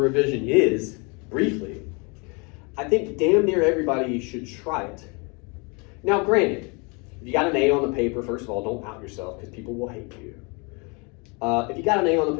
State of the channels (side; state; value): right; quieter; 31.2 dB